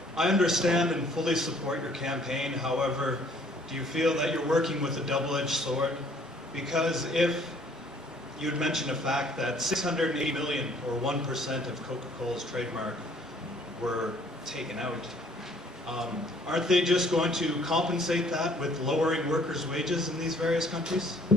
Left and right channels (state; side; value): normal; both; correlation 0.59